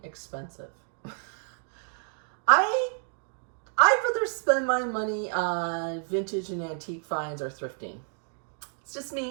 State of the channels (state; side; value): silent; left; 58 dB below the other